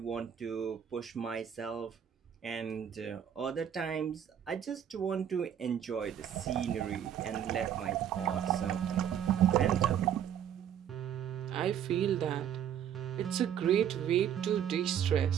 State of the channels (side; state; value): left; quieter; 9.3 dB